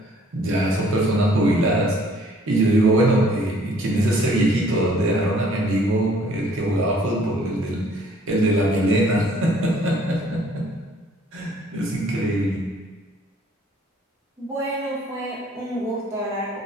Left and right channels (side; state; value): both; normal; correlation 0.59